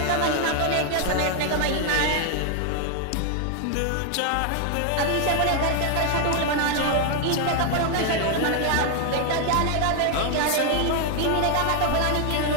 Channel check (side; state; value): both; different; correlation 0.00